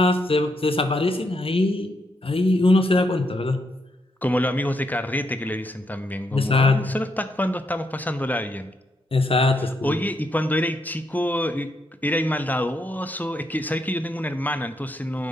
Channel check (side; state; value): both; normal; correlation 0.78